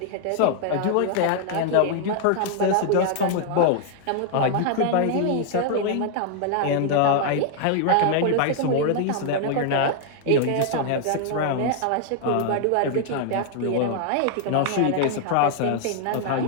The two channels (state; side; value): different; both; correlation 0.00